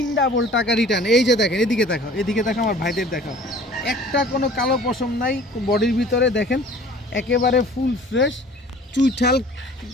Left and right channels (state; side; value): normal; both; correlation 0.48